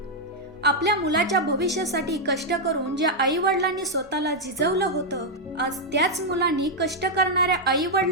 आपल्या मुलाच्या भविष्यासाठी कष्ट करून ज्या आई वडिलांनी स्वतःला झिजवलं होतं, आज त्याच मुलांनी कष्ट करणाऱ्या आई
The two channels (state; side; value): normal; both; correlation -0.02